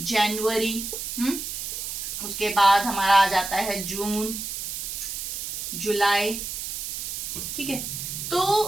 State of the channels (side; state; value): right; noise; hiss, 5 dB below the sound